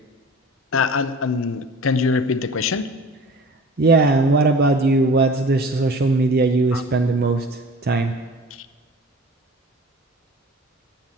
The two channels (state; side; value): normal; both; correlation 0.42